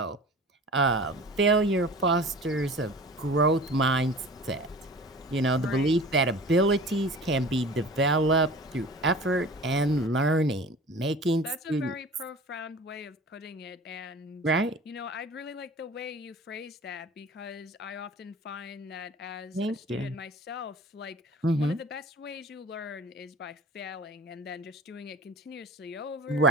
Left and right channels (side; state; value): both; normal; correlation 0.40